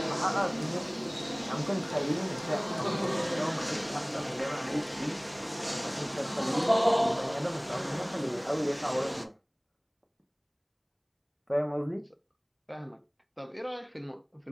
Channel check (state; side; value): identical; both; correlation 1.00